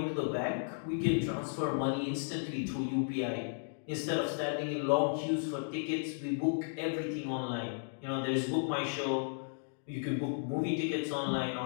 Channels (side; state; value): right; silent; digital silence